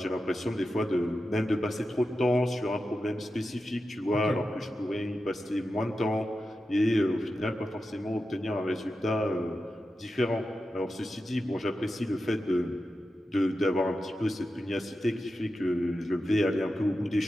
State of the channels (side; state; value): both; normal; correlation 0.91